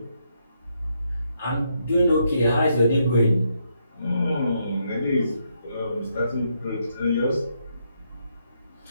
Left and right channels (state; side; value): inverted; both; correlation -0.78